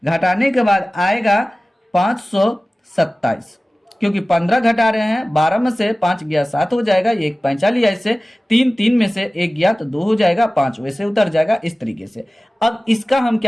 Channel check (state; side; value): normal; both; correlation 0.97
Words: घटाने के बाद आएगा 527, क्योंकि 15 घटा रहे हैं, 12 में से 5 गया 7 हो जाएगा, ये 1 पैंचा लिया इससे, 3 में से 1 गया तो 2 हो जाएगा, 5 वैसे उतर जाएगा इस तरीके से। अब इसका हम